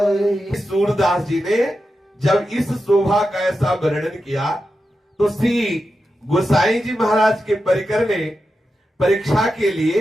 सूरदास जी ने जब इस शोभा का ऐसा वर्णन किया तो श्री गोसाई जी महाराज के परिकर ने परीक्षा के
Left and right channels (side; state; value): both; normal; correlation 0.89